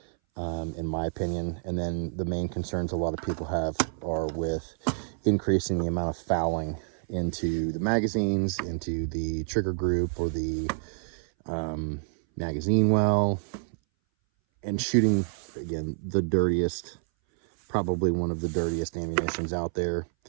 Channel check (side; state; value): left; silent; 59 dB below the other